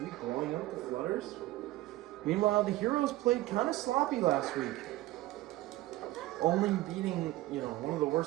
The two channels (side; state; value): left; quieter; 17.2 dB